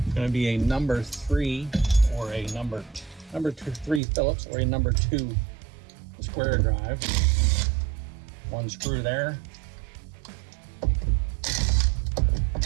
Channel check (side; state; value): left; drops out; at 4.0 s